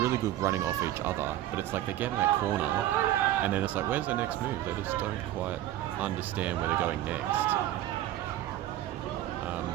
good running off each other. But it's like they get in that corner, and then it's like, where's their next move? They just don't quite understand where they're going next.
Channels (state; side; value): quieter; left; 13.8 dB